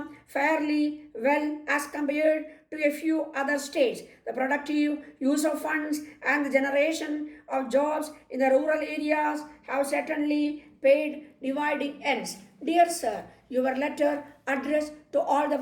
fairly well as compared to a few other states. The productive use of funds and the generation of jobs in the rural areas have certainly paid dividing ends. Dear sir, your letter addressed to all the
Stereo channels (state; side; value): identical; both; correlation 1.00